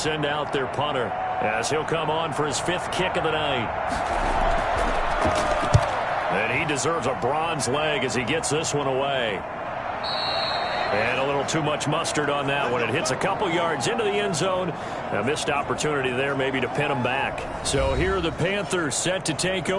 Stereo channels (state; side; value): identical; both; correlation 1.00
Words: out their punter as he'll come on for his 5th kick of the night. And he deserves a bronze leg as he gets this one away. And a little too much mustard on that one. It hits a couple yards into the end zone. A missed opportunity there maybe to pin him back. So here are the Panthers set to take